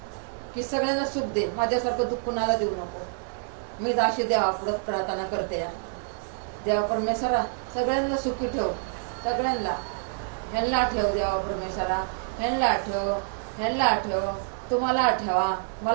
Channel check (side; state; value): left; silent; digital silence